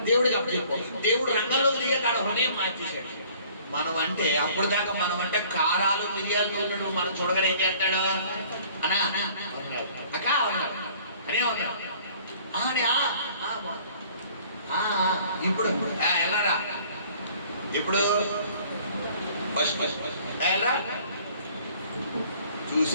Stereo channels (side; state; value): both; inverted; correlation -0.54